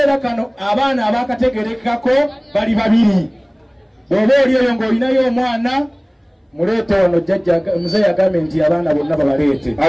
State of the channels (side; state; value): both; identical; correlation 1.00